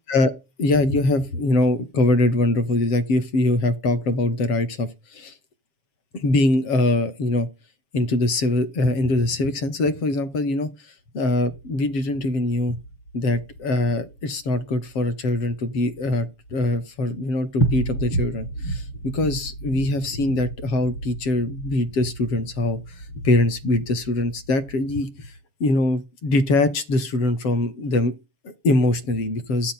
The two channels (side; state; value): right; late; 7.3 ms